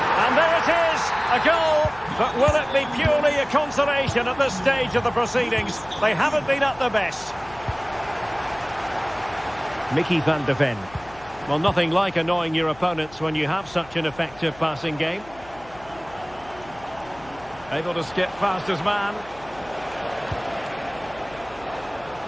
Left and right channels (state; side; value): noise; left; hum, 22 dB below the sound